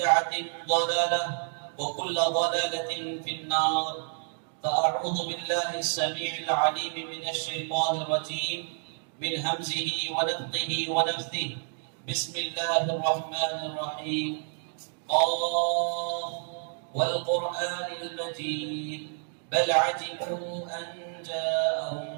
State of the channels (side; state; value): left; silent; digital silence